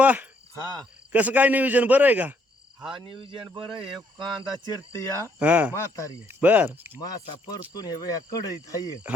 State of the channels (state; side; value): normal; both; correlation 0.70